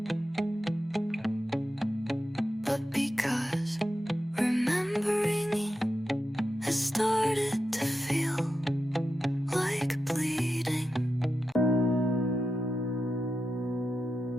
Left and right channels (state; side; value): normal; both; correlation 0.89